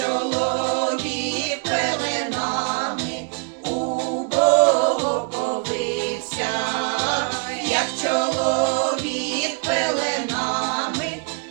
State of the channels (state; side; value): quieter; left; 38.4 dB